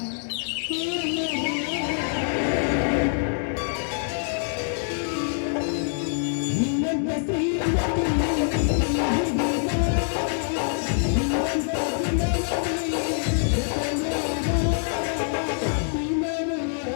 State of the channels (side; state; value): right; silent; digital silence